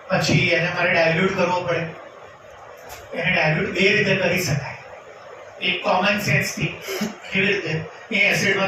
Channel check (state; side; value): identical; both; correlation 1.00